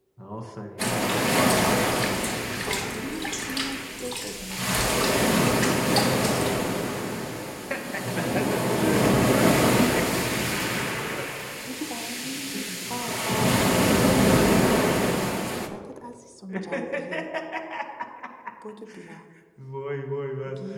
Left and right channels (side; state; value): both; identical; correlation 1.00